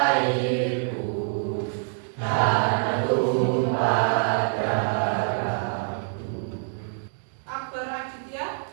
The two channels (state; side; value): silent; left; digital silence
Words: airku, tanah tumpah darahku. Akbar Aditya,